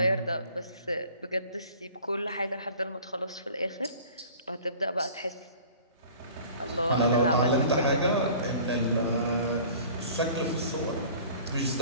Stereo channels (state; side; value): inverted; both; correlation -0.46